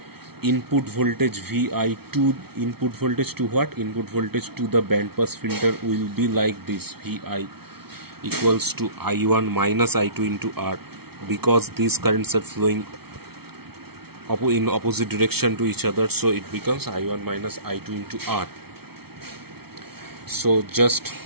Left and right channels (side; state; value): left; late; 0.95 ms